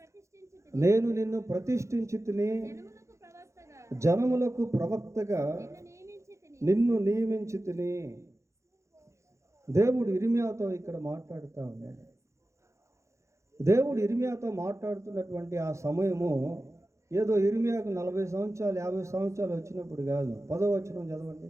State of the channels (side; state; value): left; late; 0.14 ms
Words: నేను నిన్ను ప్రతిష్ఠించి తిని, జనములకు ప్రవక్తగా నిన్ను నియమించి తిని. దేవుడు ఇర్మియాతో ఇక్కడ మాట్లాడుతూ ఉన్నాడు. దేవుడు ఇర్మియాతో మాట్లాడుతున్నటువంటి ఆ సమయము ఏదో ఇర్మియాకు 40 సంవత్సరాలు 50 సంవత్సరాలు వచ్చినప్పుడు కాదు. 10వ వచనం చదవండి.